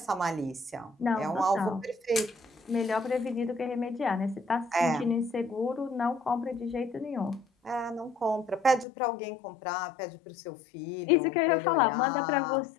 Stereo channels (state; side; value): drops out; right; at 8.8 s